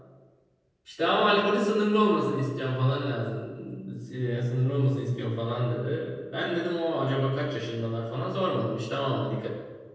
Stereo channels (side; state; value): both; identical; correlation 1.00